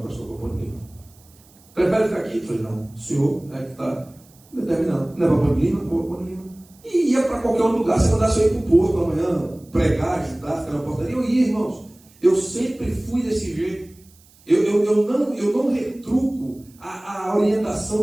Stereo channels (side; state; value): right; noise; hiss, 28 dB below the sound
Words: pastor, vou para Ponte Lima. Prefere ficar aqui? Eu falei, não, o senhor é que está determinado. Não é para Ponte Lima? Vou para Ponte Lima. E ia para qualquer outro lugar. Se mandasse eu ir para o posto amanhã, pregar, ajudar, ficar na portaria, eu ia, irmãos. Eu sempre fui desse jeito. Eu não retruco a